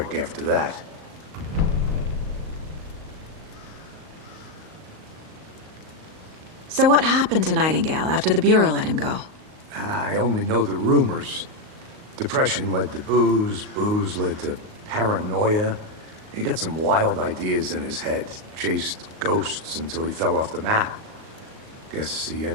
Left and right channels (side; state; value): left; late; 38 ms